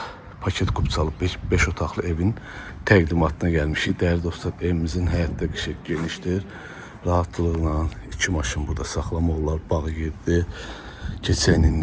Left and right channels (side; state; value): both; identical; correlation 1.00